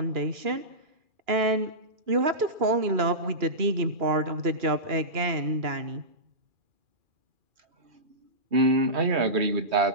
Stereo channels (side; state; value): left; late; 2.4 ms